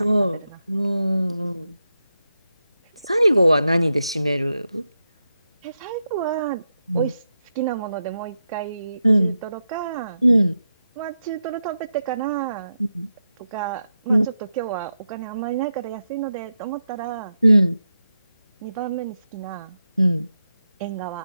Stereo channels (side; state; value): both; inverted; correlation -0.87